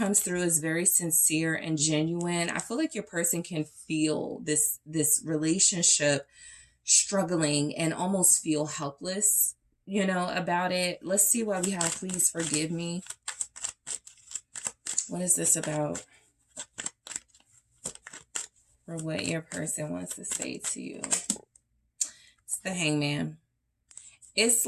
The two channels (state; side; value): identical; both; correlation 1.00